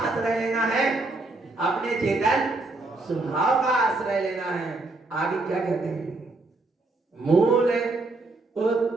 लेना है, अपने चेतन स्वभाव का आश्रय लेना है। आगे क्या कहते हैं, मूल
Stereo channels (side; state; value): left; quieter; 3.2 dB